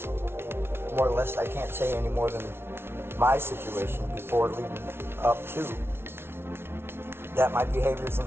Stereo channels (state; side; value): late; left; 0.12 ms